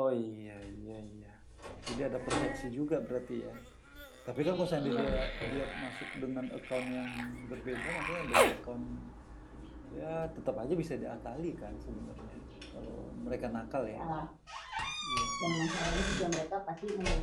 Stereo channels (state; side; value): identical; both; correlation 1.00